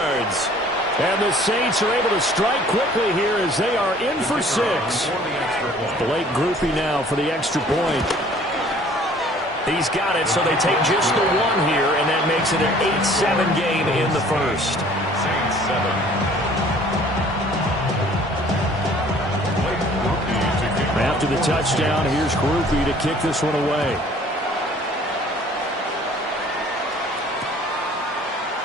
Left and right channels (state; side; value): normal; both; correlation 0.53